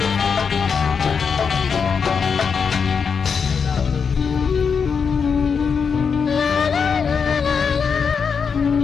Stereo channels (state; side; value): quieter; right; 6.1 dB